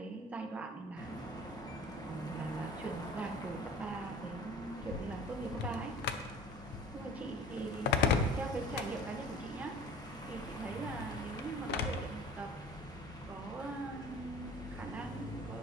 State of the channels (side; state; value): both; normal; correlation 0.43